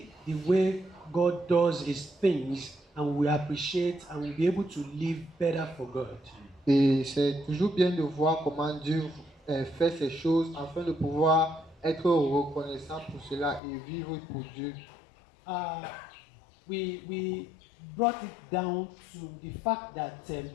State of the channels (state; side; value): drops out; right; at 13.6 s